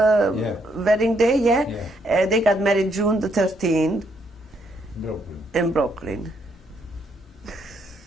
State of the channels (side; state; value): both; normal; correlation 0.73